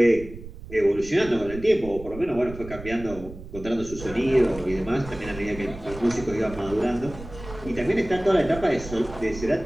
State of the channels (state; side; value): noise; right; rumble, 14 dB below the sound